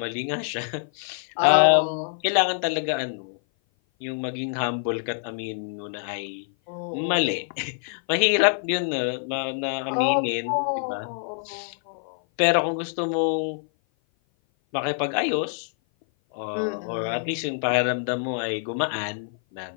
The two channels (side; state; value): right; silent; 56 dB below the other